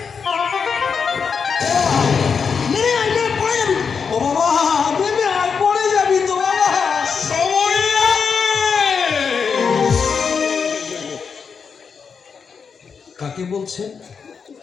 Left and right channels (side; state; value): right; quieter; 6.0 dB